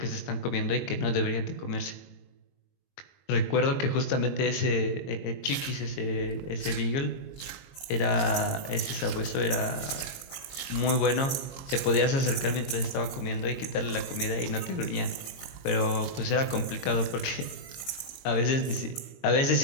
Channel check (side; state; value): right; late; 22 ms